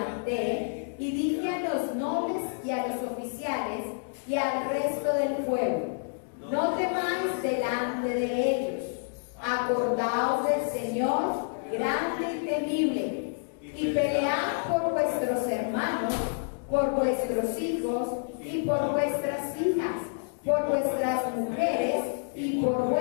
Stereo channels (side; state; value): right; silent; digital silence